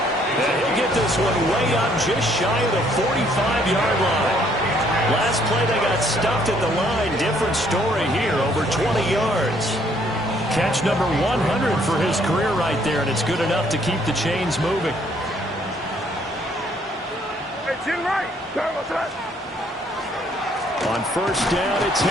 And he'll get this one way up just shy of the 45-yard line. Last play they got stuffed at the line. Different story here. Over 20 yards. Catch number 100 for his career right there, and it's good enough to keep the chains moving. On first down, it's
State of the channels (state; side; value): normal; both; correlation 0.65